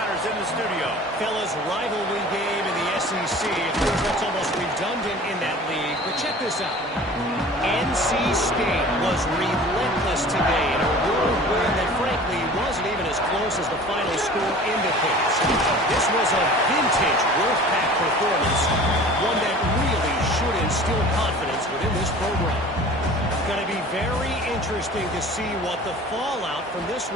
in the studio. Fellas, rivalry game in the SEC. It feels like it's almost redundant in that league. But check this out. NC State was relentless today in a road win that, frankly, wasn't even as close as the final score indicates. This was a vintage Wolfpack performance, one that really should instill confidence within this program. Going to be very interesting to see what the fallout from this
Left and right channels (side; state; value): both; normal; correlation 0.43